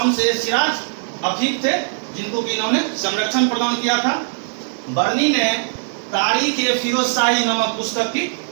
ए सिराज अफीफ थे, जिनको कि इन्होंने संरक्षण प्रदान किया था। बर्नी ने तारीख ए फिरोज शाही नामक पुस्तक की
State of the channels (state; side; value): silent; left; 66 dB below the other